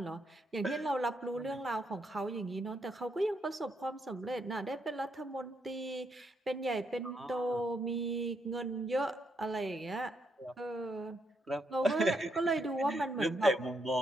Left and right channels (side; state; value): both; normal; correlation 0.77